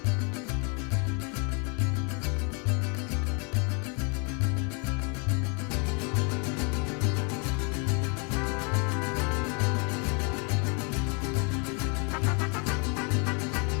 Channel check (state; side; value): quieter; right; 35.5 dB